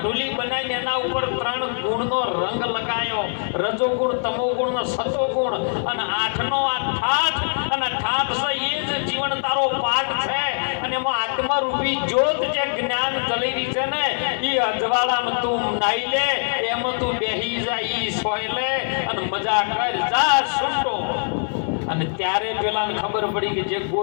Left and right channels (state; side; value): silent; right; 64 dB below the other